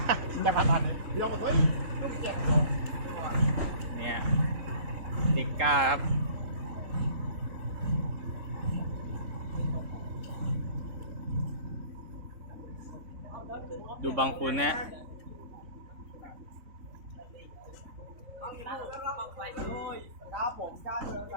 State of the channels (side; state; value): left; late; 3.6 ms